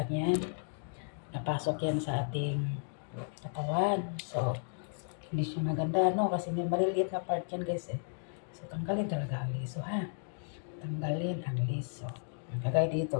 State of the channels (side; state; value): right; silent; digital silence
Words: yan, napasok yan sa ating katawan. So, hindi siya maganda, no? Kasi may maliliit na part yan guys eh. So, tanggalin talaga ang liso, ha? Tanggalin ang liso. Kagaya dito